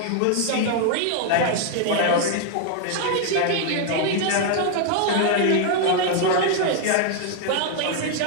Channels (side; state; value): both; different; correlation 0.00